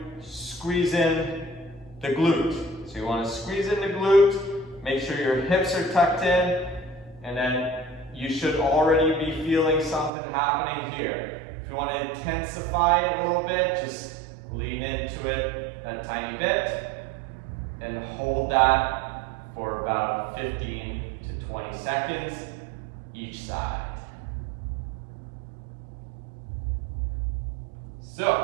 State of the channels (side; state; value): left; drops out; at 10.1 s